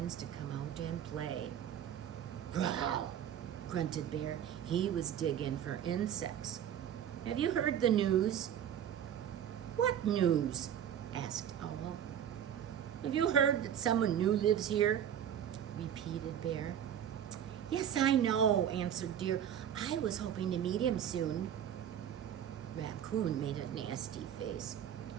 to come out and play. "Growl!" grunted Bear. He was digging for insects. "Have you heard the news?" "What news?" asked Owl. "Have you heard that someone new lives here?" repeated Bear. Yes, I know, answered Deer. I was hoping to meet him soon. Raccoon made a nasty face.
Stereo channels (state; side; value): quieter; left; 9.6 dB